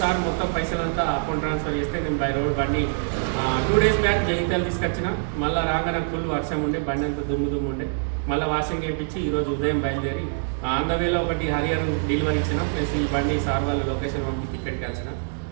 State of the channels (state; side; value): silent; left; digital silence